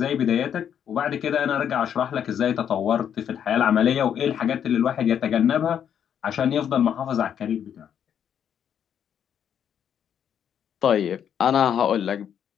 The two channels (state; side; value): quieter; right; 8.8 dB